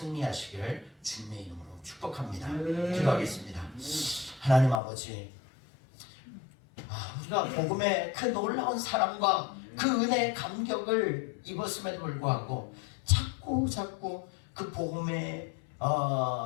주님의 이름으로 축복합니다. 기도하겠습니다. 하나님 아버지, 우리가 복음의 그 놀라운 사랑과 그 은혜의 감격을 입었음에도 불구하고 자꾸 그 복음이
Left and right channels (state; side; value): drops out; right; at 4.8 s